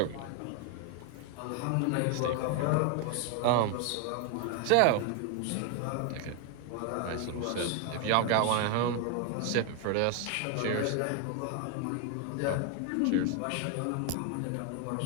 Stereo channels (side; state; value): both; different; correlation 0.01